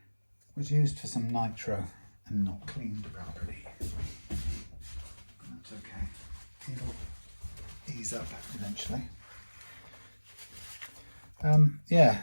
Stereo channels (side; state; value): both; inverted; correlation -1.00